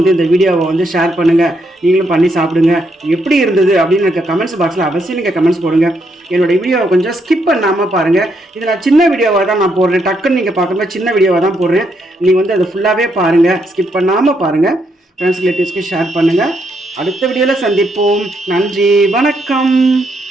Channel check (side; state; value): both; normal; correlation 0.76